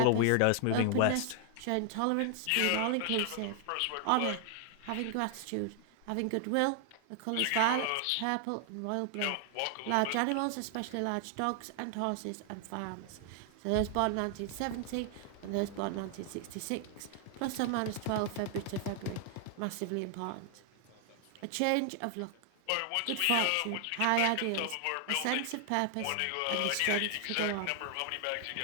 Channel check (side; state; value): both; different; correlation 0.00